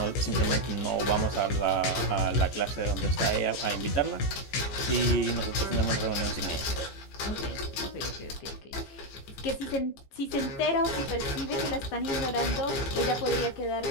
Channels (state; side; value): late; right; 15 ms